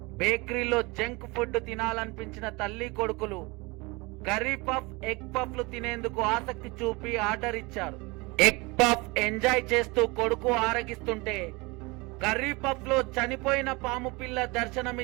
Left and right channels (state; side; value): quieter; left; 25.4 dB